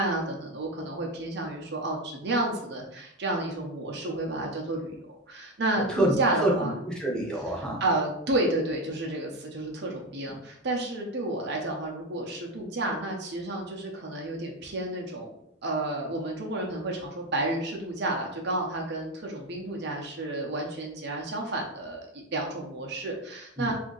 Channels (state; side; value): normal; both; correlation 0.15